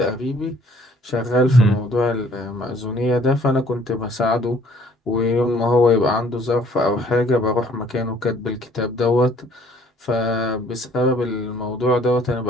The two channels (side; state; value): both; normal; correlation 0.59